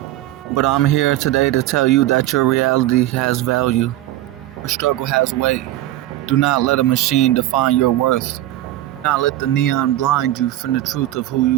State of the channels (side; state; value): left; quieter; 14.9 dB